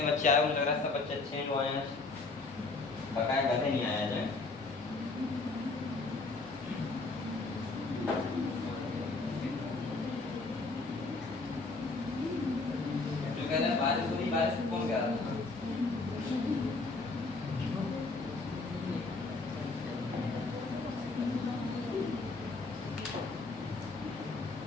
बच्चे आए मुझे लग रहा है सब बच्चे अच्छे हैं जो आए हैं, बकाया गधे नहीं आया जाए। जो कह रहा है बारिश हो रही, बारिश कौन कह रहा था,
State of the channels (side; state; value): right; quieter; 3.6 dB